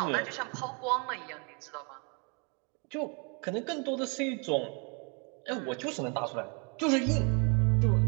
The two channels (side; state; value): left; quieter; 34.5 dB